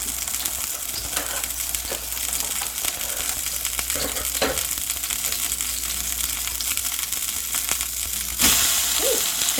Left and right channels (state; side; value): identical; both; correlation 1.00